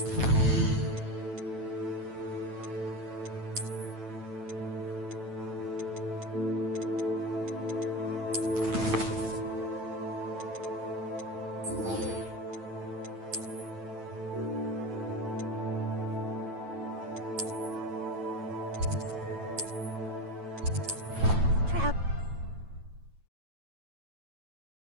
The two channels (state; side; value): late; left; 9.1 ms